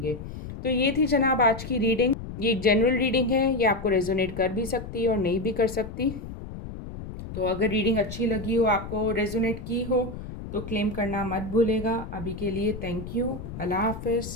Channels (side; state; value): left; noise; rumble, 10 dB below the sound